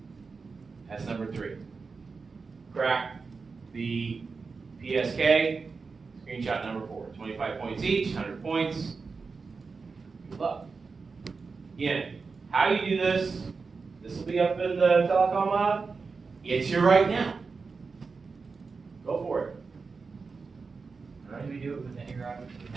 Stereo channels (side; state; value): left; quieter; 4.6 dB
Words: That's number 3. Crack the PSK, screenshot number 4. 25 points each, 100 points. Good luck. Again, how you do this, this will be up in the telecom lab. It's here right now. Go for it. How do we do it with any router we